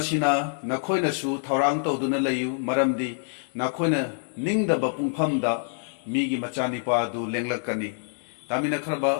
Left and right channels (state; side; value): silent; right; digital silence